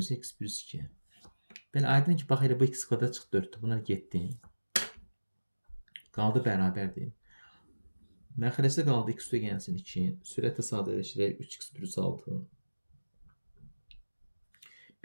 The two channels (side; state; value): both; inverted; correlation -1.00